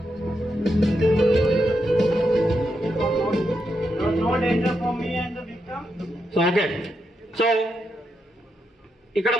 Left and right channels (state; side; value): normal; both; correlation 0.83